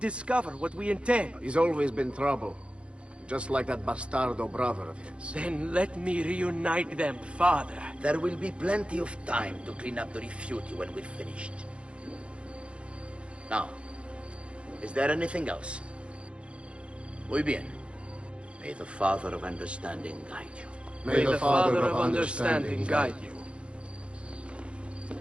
what we intend. He's always been trouble. Just like that bastardo brother of his. Then let me reunite them, father. There will be plenty of time to clean up the rifiuti when we're finished. Now, is there anything else? Muy bien. May the Father of Understanding guide you. May the Father of Understanding guide you.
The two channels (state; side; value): late; left; 0.059 ms